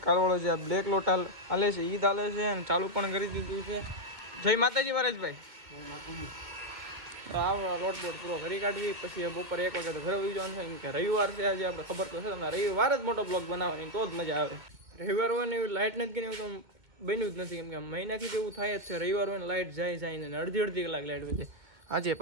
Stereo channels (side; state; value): left; late; 2.2 ms